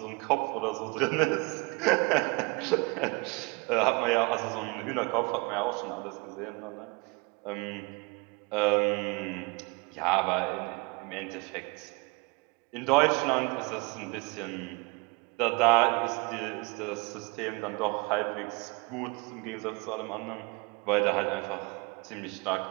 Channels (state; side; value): quieter; left; 28.0 dB